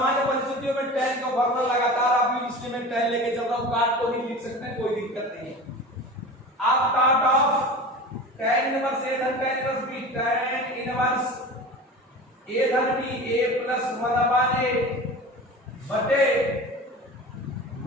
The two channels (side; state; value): both; normal; correlation 0.34